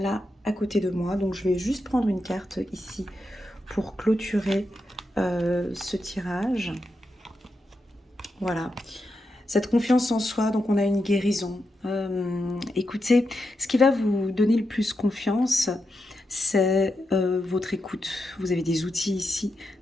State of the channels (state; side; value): normal; both; correlation 0.86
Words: à côté de moi. Donc je vais juste prendre une carte ici pour clôturer ce tirage. Voilà. Cette confiance en soi, donc on a une guérison. Écoutez, ce qui va vous donner le plus confiance, c'est votre écoute. Vous avez des outils ici